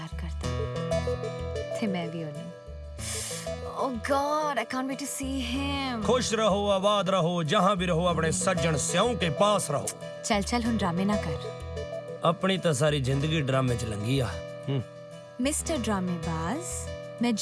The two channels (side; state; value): both; identical; correlation 1.00